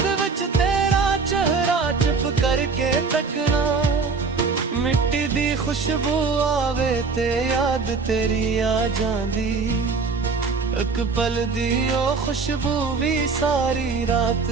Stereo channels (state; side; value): quieter; left; 4.7 dB